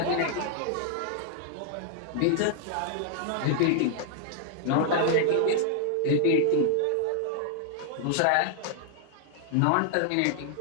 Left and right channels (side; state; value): both; different; correlation -0.01